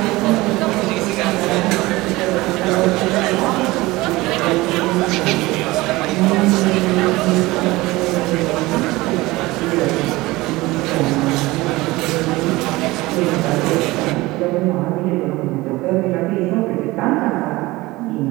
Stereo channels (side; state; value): left; quieter; 20.2 dB